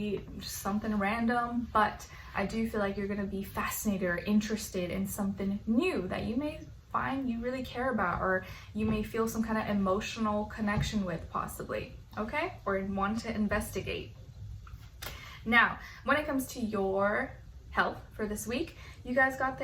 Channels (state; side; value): identical; both; correlation 1.00